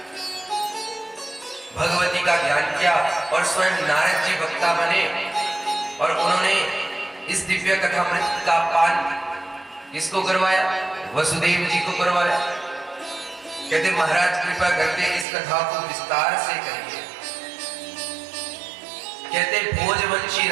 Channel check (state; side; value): drops out; left; at 15.2 s